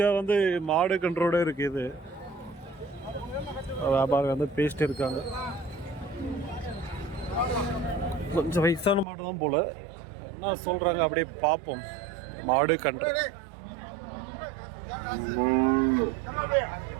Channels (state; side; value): drops out; left; at 9.1 s